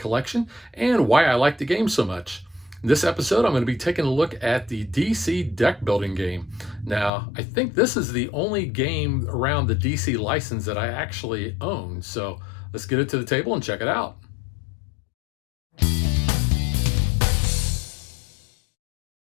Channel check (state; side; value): drops out; right; at 7.1 s